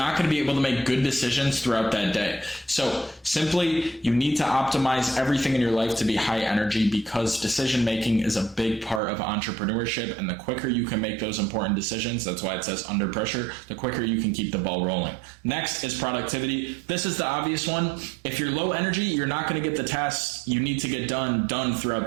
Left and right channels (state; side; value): drops out; left; at 9.0 s